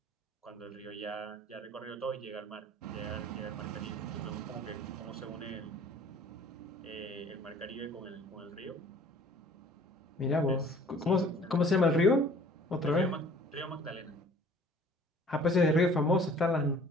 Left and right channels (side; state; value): both; normal; correlation 0.52